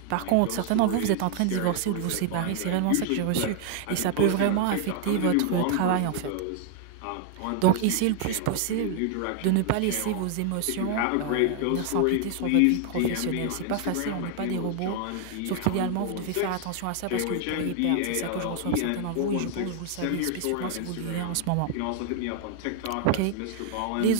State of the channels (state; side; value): different; both; correlation 0.00